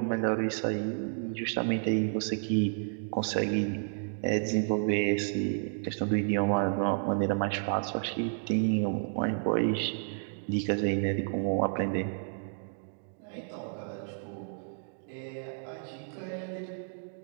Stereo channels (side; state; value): left; silent; digital silence